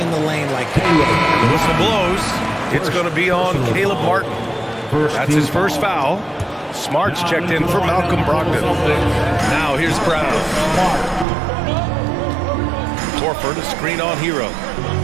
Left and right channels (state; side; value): drops out; left; at 11.2 s